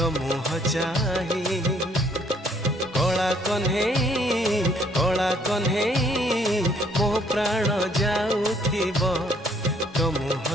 मुह चाही। कला कन्हेई मो प्राण जाउथिब तो मुह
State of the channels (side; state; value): both; normal; correlation 0.64